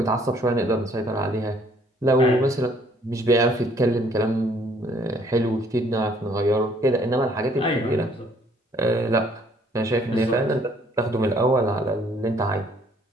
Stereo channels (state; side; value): normal; both; correlation 0.62